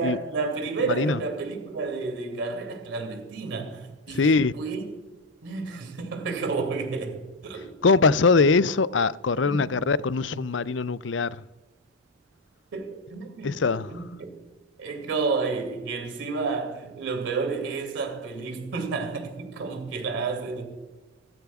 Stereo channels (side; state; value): both; normal; correlation 0.06